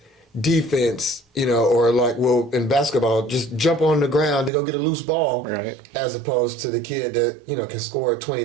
defense, or like, well, in basketball, just jump on the ground to go get a loose ball, as opposed to the kid that, can score 20,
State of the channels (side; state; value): left; drops out; at 4.5 s